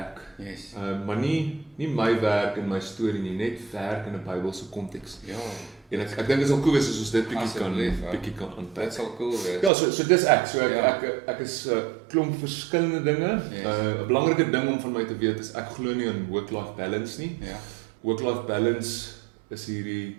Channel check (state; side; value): drops out; left; at 9.7 s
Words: Maar nie my werk en my storie nie, net werk in 'n Bybelse konteks. En ek dink dit is al cool wees as ons dit bietjie kan aanpak. Dit sal cool wees. Ja, so dis ek. So ek is klomp verskillende dinge. 'n Belangrike ding om van my te weet is ek glo nie in work-life balance nie. Work-life balance is hierdie